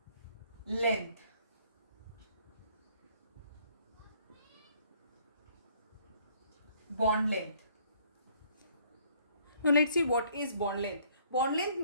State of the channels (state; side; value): inverted; both; correlation -0.63